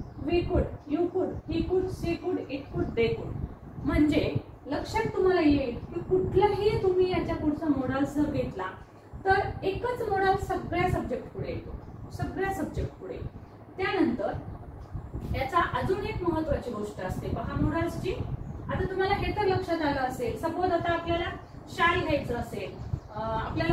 वी कुड, यू कुड, ही कुड, सी कुड, इट कुड, दे कुड. म्हणजे लक्षात तुम्हाला येईल की कुठलाही तुम्ही याच्या पुढचा मोडाल जर घेतला तर एकच मोडाल सगळ्या सब्जेक्ट पुढे येतो, सगळ्या सब्जेक्ट पुढे. त्यानंतर याचा अजून एक महत्वाची गोष्ट असते पहा मोडाल्सची. आता तुम्हाला हे तर लक्षात आलं असेल, सपोज आता आपल्याला शाल घ्यायचं असेल,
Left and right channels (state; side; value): identical; both; correlation 1.00